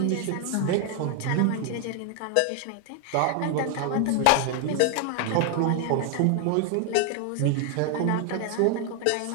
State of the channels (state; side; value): different; both; correlation 0.01